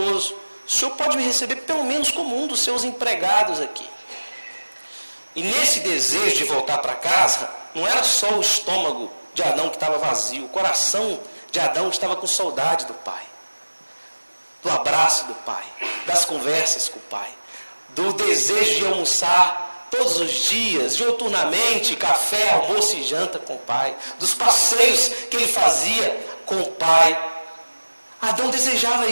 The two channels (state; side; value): inverted; both; correlation -1.00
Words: o Senhor pode me receber pelo menos como um dos seus empregados aqui. E nesse desejo de voltar para casa, não era só o estômago de Adão que estava vazio, o coração de Adão estava com saudade do pai, do abraço do pai, das conversas com o pai, do desejo de almoçar todos os dias, diuturnamente, café, almoço e janta com o pai, dos passeios que ele fazia com o pai. Adão desejava